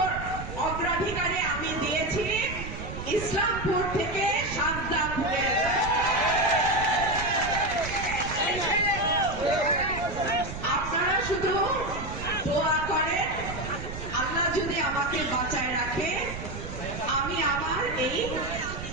অগ্রাধিকারে আমি দিয়েছি ইসলামপুর থেকে সাজদাপুরের। আপনারা শুধু দোয়া করেন, আল্লাহ যদি আমাকে বাঁচায় রাখে, আমি আমার এই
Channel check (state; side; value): noise; right; rumble, 8 dB below the sound